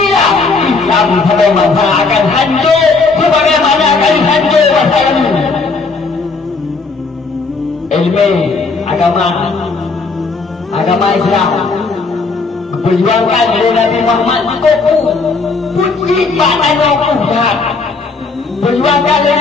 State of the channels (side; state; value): right; quieter; 4.1 dB